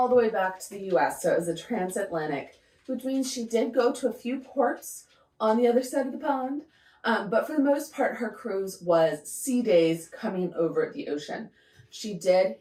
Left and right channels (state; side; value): identical; both; correlation 1.00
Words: the way back to the US. So it was a transatlantic, which means she did go to a few ports on the other side of the pond. But for the most part, her cruise was sea days coming over the ocean. She did